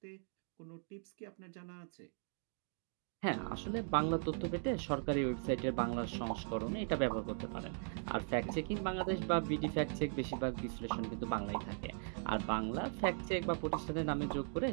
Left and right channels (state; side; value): silent; left; 52 dB below the other